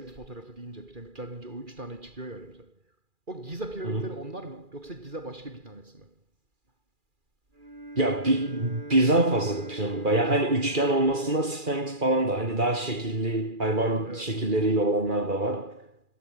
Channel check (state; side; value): late; left; 2.4 ms